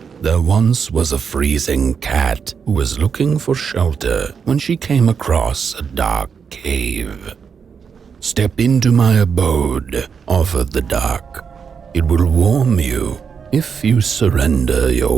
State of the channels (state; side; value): quieter; left; 6.4 dB